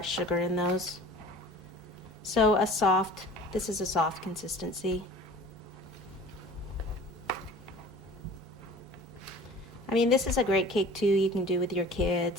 sugar in those. So this is a soft consistency. I mean, this is a great cake too. You can do with your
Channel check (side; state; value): both; normal; correlation 0.44